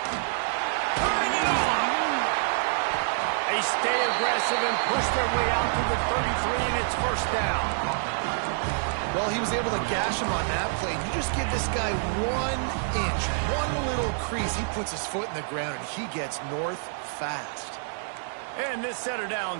Turning it on. They stay aggressive and push their way out to the 33, and it's first down. Well, he was able to gash him on that play. You just give this guy 1 inch, one little crease. He puts his foot in the ground, and he gets north fast. And this set of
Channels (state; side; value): silent; left; digital silence